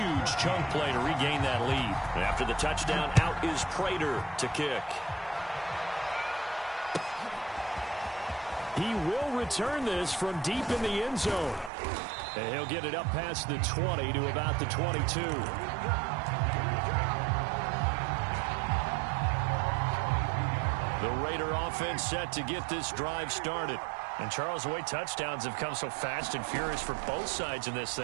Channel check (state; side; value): drops out; left; at 11.7 s